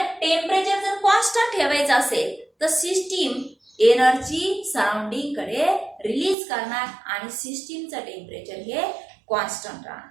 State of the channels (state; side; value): drops out; left; at 6.4 s